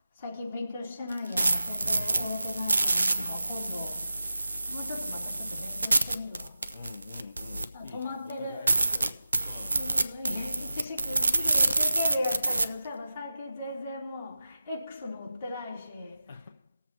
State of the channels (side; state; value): both; inverted; correlation -0.93